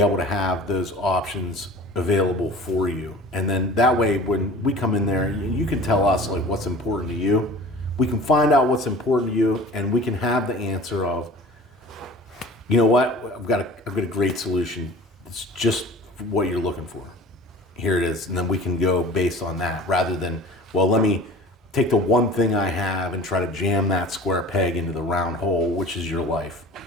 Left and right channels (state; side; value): normal; both; correlation 0.41